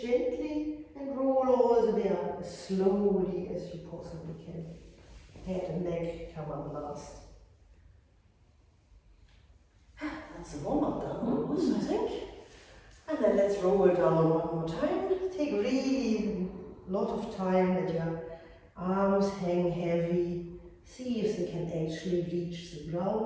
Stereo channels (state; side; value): identical; both; correlation 1.00